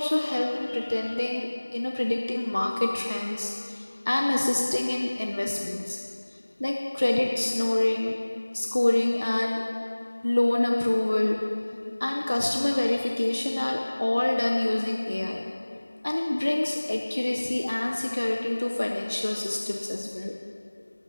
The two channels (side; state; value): both; inverted; correlation -1.00